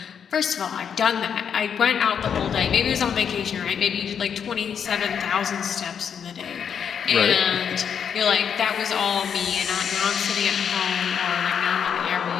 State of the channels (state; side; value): quieter; right; 7.6 dB